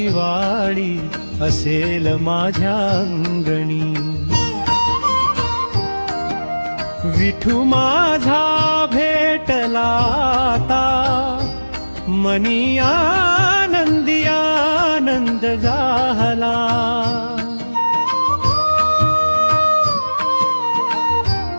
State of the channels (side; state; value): both; inverted; correlation -1.00